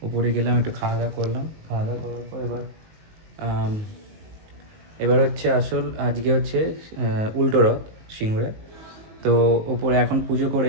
উপরে গেলাম, একটু খাওয়া দাওয়া করলাম। খাওয়া দাওয়া করার পর এবার হচ্ছে আসল, আজকে হচ্ছে উল্টো রথ সিঙ্গুরে। তো ওপরে এখন পুজো করে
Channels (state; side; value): late; left; 19 ms